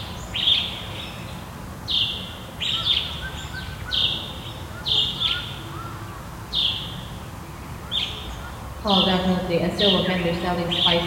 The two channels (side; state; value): both; identical; correlation 1.00